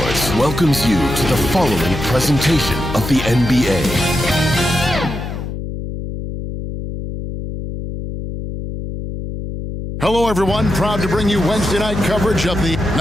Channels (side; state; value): left; noise; hum, 7 dB below the sound